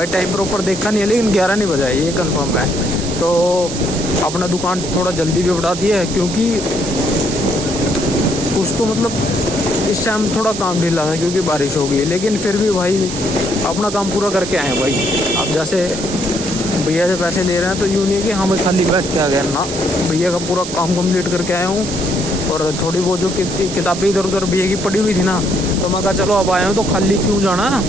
टाइम प्रॉपर देखा नहीं है, लेकिन 11 नहीं बजा है ये कंफर्म है। तो अपना दुकान थोड़ा जल्दी भी बढ़ा दिया है, क्योंकि कुछ तो मतलब इस टाइम थोड़ा काम ढीला था क्योंकि बारिश हो गई, लेकिन फिर भी भाई अपना काम पूरा करके आए हैं भाई। अब जैसे भैया से पैसे ले रहे हैं तो यूँ नहीं है कि हाँ मैं खाली बैठ के आ गया ना, भैया का पूरा काम कंप्लीट करके आया हूँ। और थोड़ी बहुत जो किताबें इधर उधर भैया की पड़ी हुई थी ना, तो मैं कहा चलो अब आया हूँ तो खाली क्यों जाना,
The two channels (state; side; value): noise; right; hiss, 9 dB below the sound